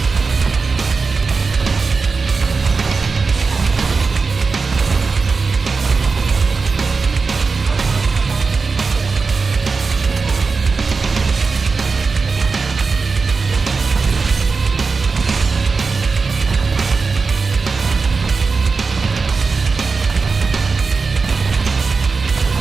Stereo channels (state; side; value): quieter; left; 4.5 dB